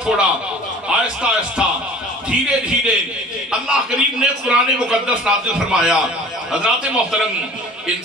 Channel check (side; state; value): both; normal; correlation 0.45